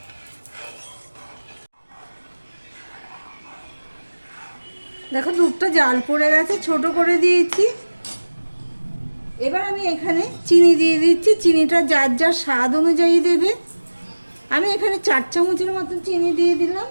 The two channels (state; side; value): inverted; both; correlation -1.00